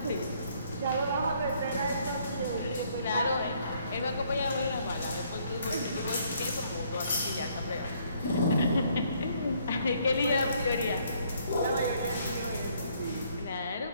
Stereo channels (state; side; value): inverted; both; correlation -0.66